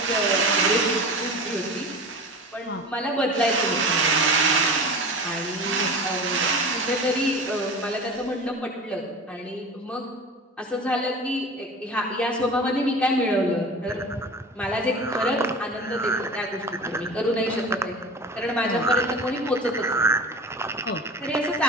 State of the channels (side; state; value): both; normal; correlation 0.34